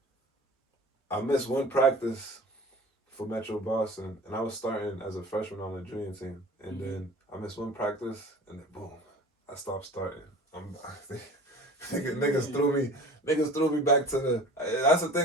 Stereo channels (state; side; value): normal; both; correlation 0.42